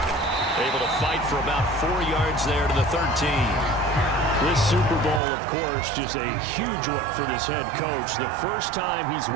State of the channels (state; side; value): drops out; left; at 5.2 s